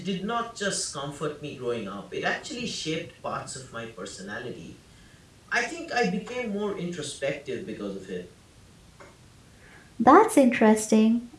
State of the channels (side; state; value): both; identical; correlation 1.00